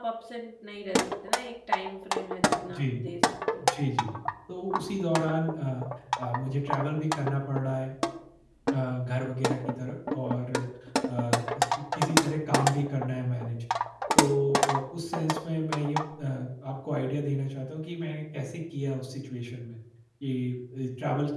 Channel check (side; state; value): both; identical; correlation 1.00